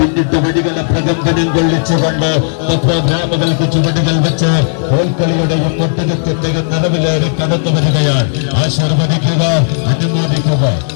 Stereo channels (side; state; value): right; silent; digital silence